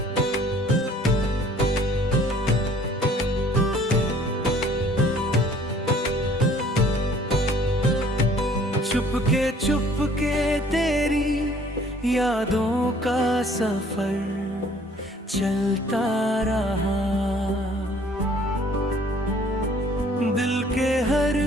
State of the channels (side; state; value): both; normal; correlation 0.56